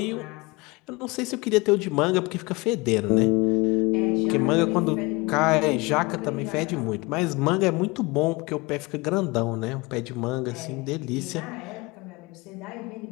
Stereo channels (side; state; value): right; quieter; 24.9 dB